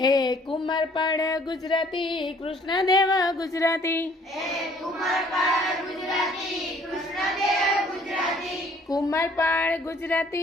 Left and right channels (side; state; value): both; normal; correlation 0.59